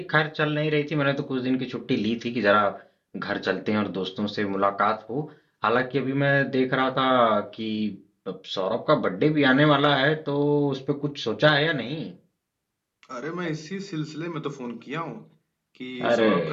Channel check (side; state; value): both; identical; correlation 1.00